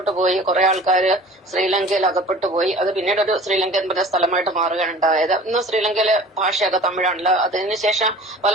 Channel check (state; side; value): normal; both; correlation 0.44